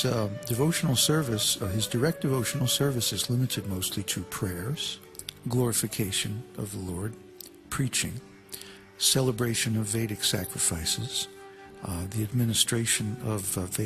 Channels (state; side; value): identical; both; correlation 1.00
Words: devotional service, his direct devotional service, is limited mostly to prayers, glorification of the Lord, preaching, celebration of Vedic sacrifices, the administration of